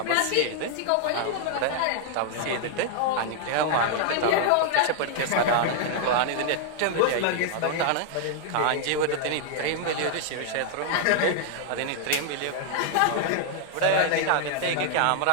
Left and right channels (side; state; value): both; different; correlation 0.00